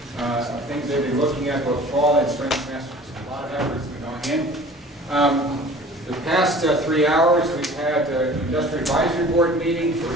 things they've been looking at both fall and spring semesters. A lot of effort has been going in. The past 3 hours, we've had an Industrial Advisory Board meeting for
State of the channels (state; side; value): normal; both; correlation 0.45